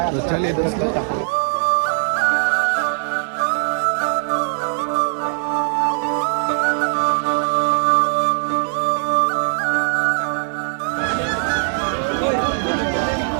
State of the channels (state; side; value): silent; left; digital silence